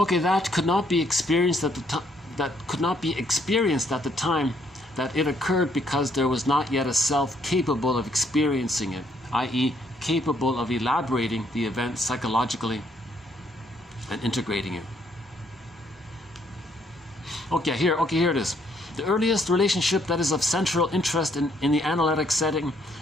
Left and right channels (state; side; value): normal; both; correlation 0.69